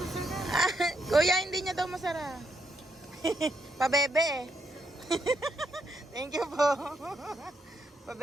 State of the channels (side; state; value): both; normal; correlation 0.78